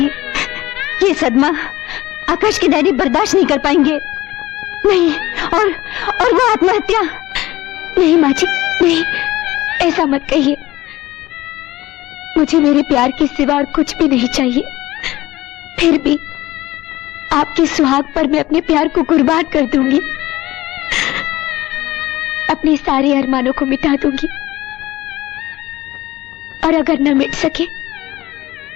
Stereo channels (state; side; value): quieter; right; 17.4 dB